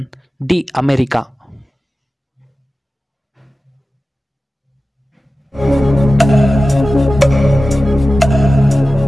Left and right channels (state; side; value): normal; both; correlation 0.95